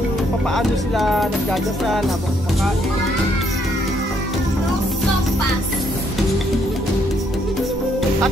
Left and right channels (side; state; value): both; normal; correlation 0.71